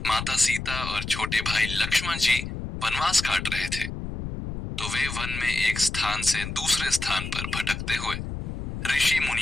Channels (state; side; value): noise; left; rumble, 6 dB below the sound